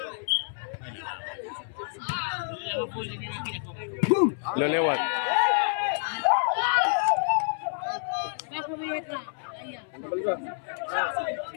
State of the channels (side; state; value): right; silent; 59 dB below the other